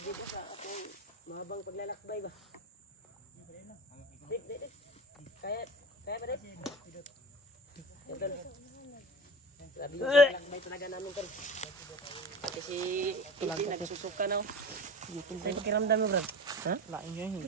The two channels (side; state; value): both; normal; correlation 0.31